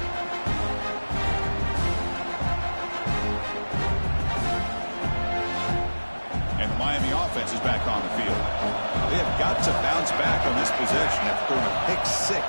And the Miami offense is back on the field. They have got to bounce back on this possession after throwing a pick 6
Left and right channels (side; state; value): both; inverted; correlation -1.00